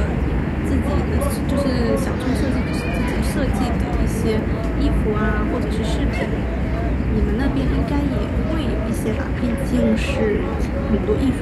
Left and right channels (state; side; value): identical; both; correlation 1.00